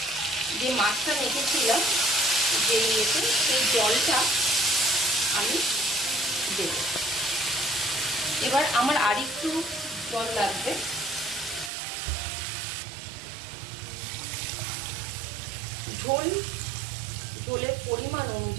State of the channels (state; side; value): drops out; left; at 11.7 s